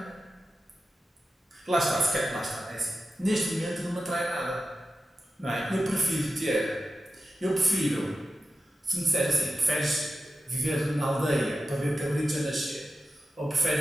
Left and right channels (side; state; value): both; normal; correlation 0.91